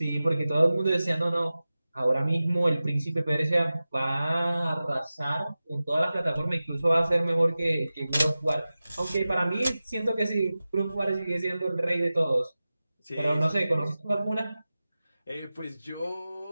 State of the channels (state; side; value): inverted; both; correlation -0.96